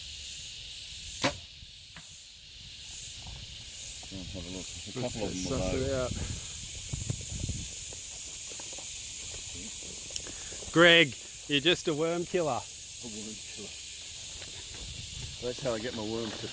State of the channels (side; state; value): both; identical; correlation 1.00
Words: Have a look. A couple of them below. Greg, you're just a worm killer. A worm killer. That's how I get my worms to